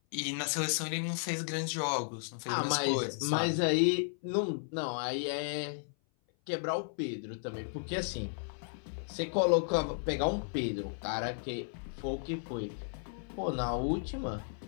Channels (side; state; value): right; silent; 55 dB below the other